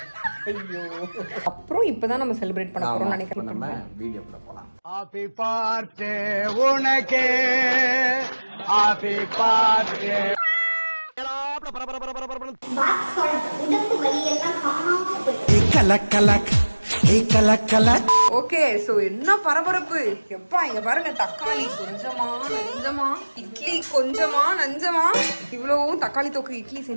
ஐயோ, அப்புறம் இப்பதான் நம்ம செலிப்ரேட் பண்ண போறோம் நினைக்கிறேன். நம்ம வீடியோக்குள்ள போலாம். ஹாப்பி பர்த்டே உனக்கு, ஹாப்பி பர்த்டே. ஓகே, சோ என்ன பரபரப்பு எப்பா. இங்க பாருங்க, தக்காளி கொஞ்சமா நஞ்சமா, இட்லி கொஞ்சமா நஞ்சமா, இவ்வளவும் தக்காளி தொக்கு இட்லி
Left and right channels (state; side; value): inverted; both; correlation -1.00